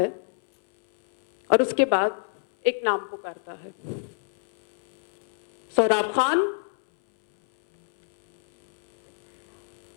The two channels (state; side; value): silent; right; 61 dB below the other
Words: और उसके बाद एक नाम पुकारता है, सोहराब खान।